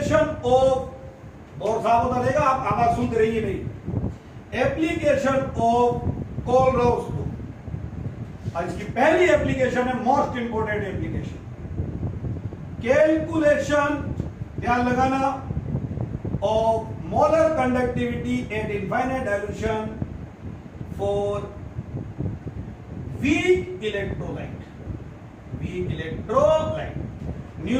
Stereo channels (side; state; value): both; identical; correlation 1.00